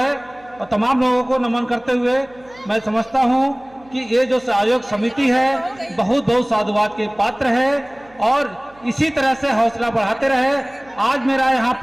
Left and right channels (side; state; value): right; noise; hum, 28 dB below the sound